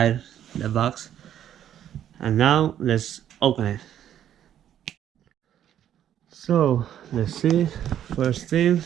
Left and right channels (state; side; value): quieter; left; 10.5 dB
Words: the box. And now let's open it. So let's see. First thing,